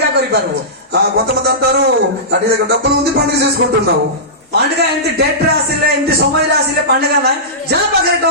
କରିପାରିବୁ. కొంతమంది అంటారు, నీ దగ్గర డబ్బులు ఉంది, పండుగ చేసుకుంటున్నావు. ପାଣ୍ଡିକା ଏମିତି ଡେଟ୍ ରେ ଆସିଲେ, ଏମିତି ସମୟରେ ଆସିଲେ ପାଣ୍ଡିକା ନାହିଁ. ଯାହା ପାଖରେ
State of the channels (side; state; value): both; normal; correlation -0.18